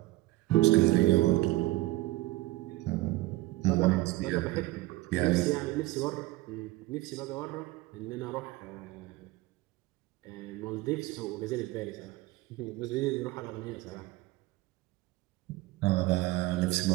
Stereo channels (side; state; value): left; quieter; 18.4 dB